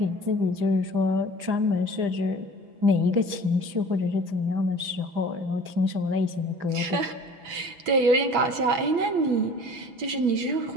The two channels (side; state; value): left; late; 6.1 ms